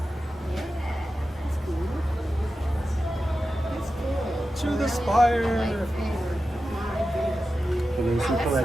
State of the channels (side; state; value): both; normal; correlation 0.92